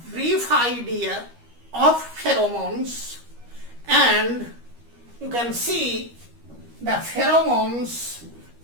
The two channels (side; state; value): left; late; 13 ms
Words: brief idea of pheromones, and you can see the pheromones